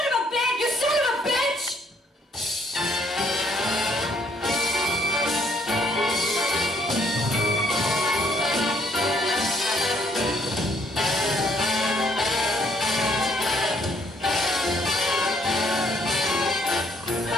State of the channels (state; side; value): normal; both; correlation 0.67